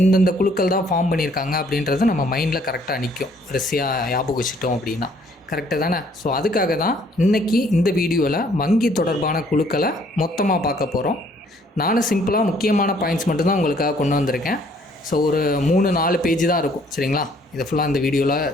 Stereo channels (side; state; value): both; normal; correlation 0.62